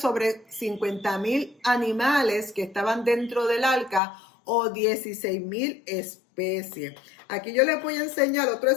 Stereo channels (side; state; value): right; drops out; at 4.0 s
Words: 50.000 animales que estaban dentro del arca, o 16.000 especies. Aquí yo les voy a enseñar otro